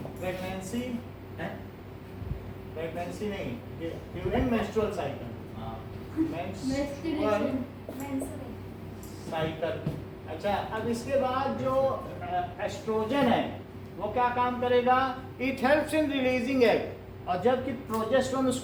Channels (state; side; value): identical; both; correlation 1.00